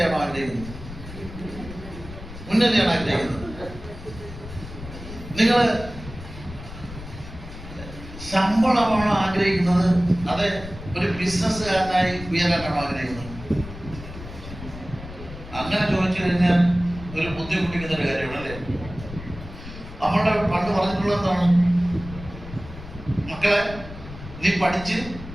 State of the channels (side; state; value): left; noise; rumble, 13 dB below the sound